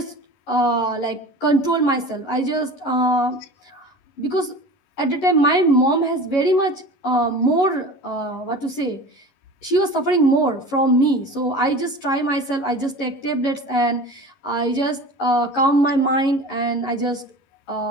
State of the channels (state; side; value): late; right; 11 ms